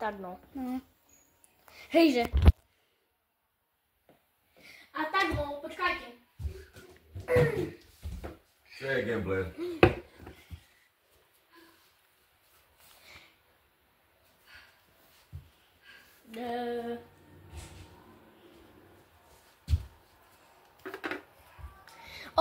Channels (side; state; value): both; identical; correlation 1.00